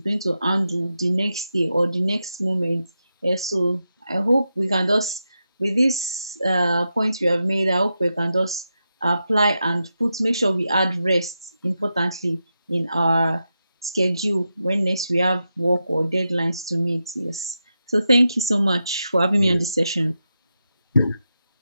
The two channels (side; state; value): both; inverted; correlation -0.88